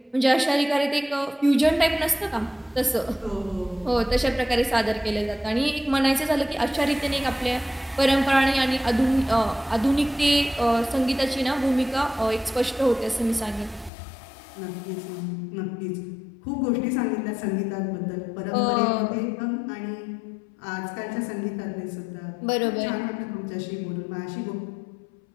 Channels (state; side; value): drops out; right; at 13.9 s